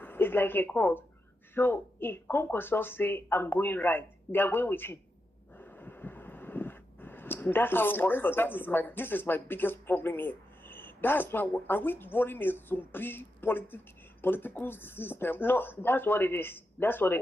It's like a cult. So if Kwakwanso say, I'm going right, they are going with him. That's how it works for them. This is my biggest problem here. That's why are we running a zombie political system? No, that's what it is. That's what it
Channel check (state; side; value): normal; both; correlation 0.87